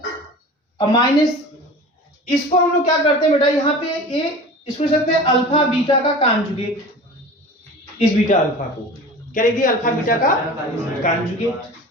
और माइनस इसको हम लोग क्या करते हैं बेटा, यहाँ पे ये इसको सकते हैं अल्फा बीटा का कॉन्जुगेट, इस बीटा अल्फा को क्या लिख दिया, अल्फा बीटा का कॉन्जुगेट।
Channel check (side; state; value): both; normal; correlation 0.37